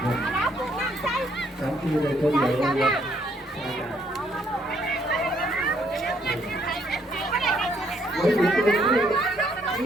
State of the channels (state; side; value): normal; both; correlation 0.69